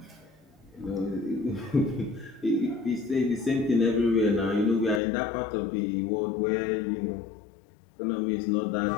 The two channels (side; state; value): right; drops out; at 5.0 s